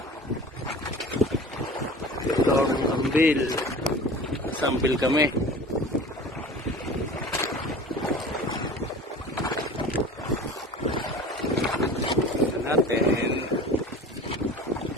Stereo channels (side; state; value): both; normal; correlation 0.39